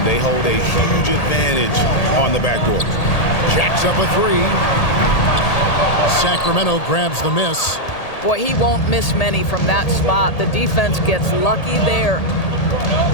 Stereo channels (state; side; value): late; right; 1.8 ms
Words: they hold a huge advantage on the backdoor. Jacks up a 3. Sacramento grabs the miss. Boy, he won't miss many from that spot. The defense gets lucky there.